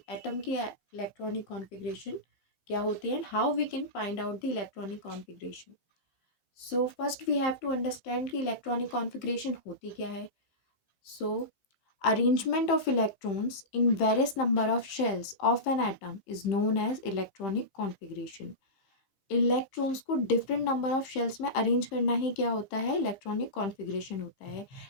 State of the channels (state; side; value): late; right; 15 ms